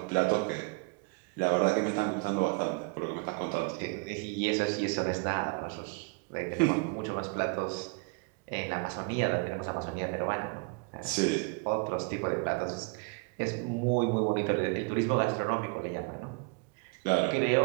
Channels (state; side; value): quieter; left; 31.0 dB